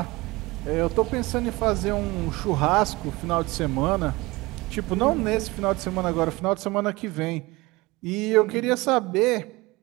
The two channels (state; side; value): quieter; left; 22.0 dB